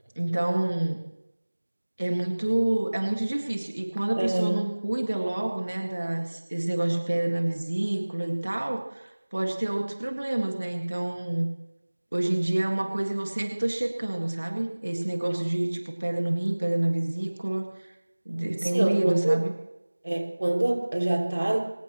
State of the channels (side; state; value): both; inverted; correlation -1.00